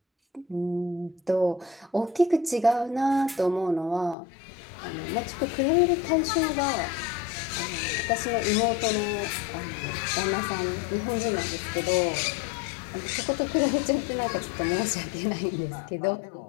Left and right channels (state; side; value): drops out; right; at 4.2 s